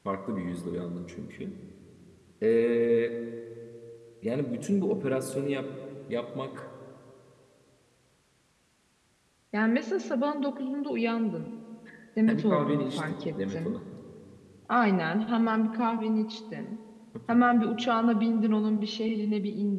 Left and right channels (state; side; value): identical; both; correlation 1.00